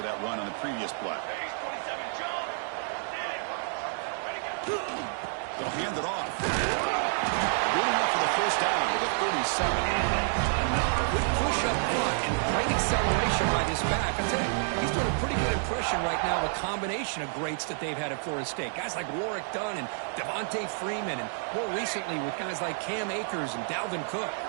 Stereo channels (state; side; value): silent; left; digital silence